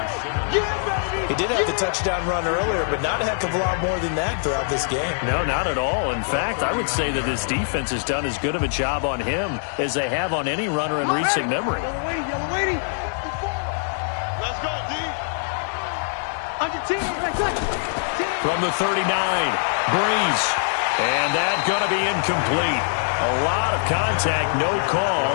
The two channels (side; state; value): right; silent; 63 dB below the other